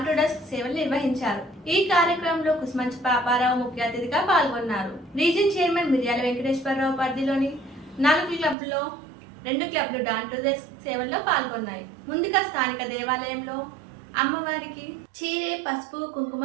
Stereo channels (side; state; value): left; drops out; at 8.6 s